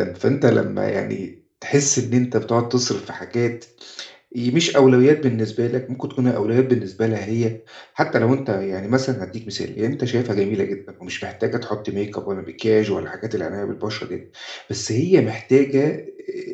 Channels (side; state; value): both; identical; correlation 1.00